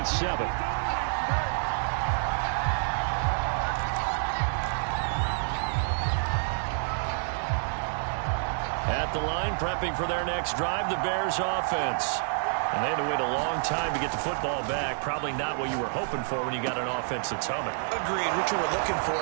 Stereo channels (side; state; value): left; silent; 59 dB below the other